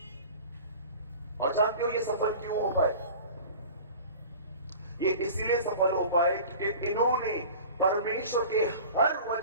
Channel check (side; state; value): both; inverted; correlation -0.40